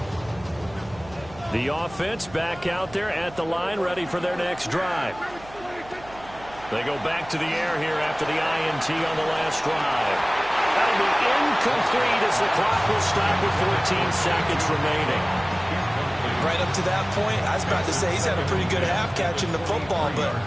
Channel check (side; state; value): right; noise; hum, 20 dB below the sound